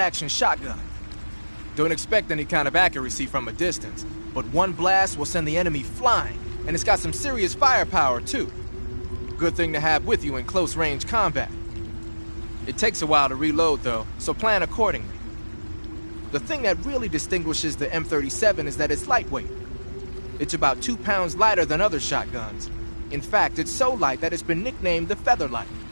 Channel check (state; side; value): inverted; both; correlation -1.00